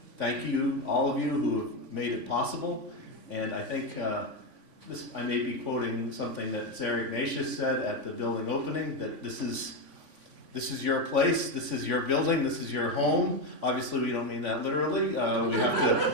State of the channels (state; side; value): late; left; 3.5 ms